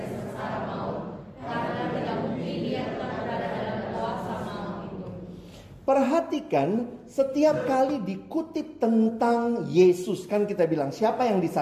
sengsara maut. Karena tidak mungkin dia tetap berada dalam kuasa maut itu. Perhatikan, setiap kali dikutip tentang Yesus, kan kita bilang siapa yang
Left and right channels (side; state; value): both; identical; correlation 1.00